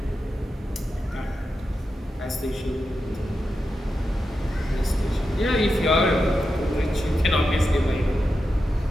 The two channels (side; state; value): both; normal; correlation 0.89